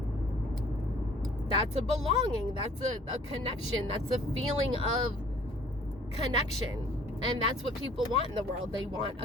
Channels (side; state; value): both; normal; correlation 0.54